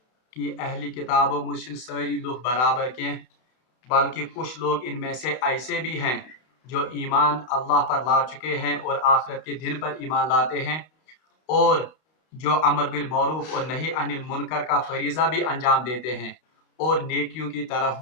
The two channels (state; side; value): late; right; 32 ms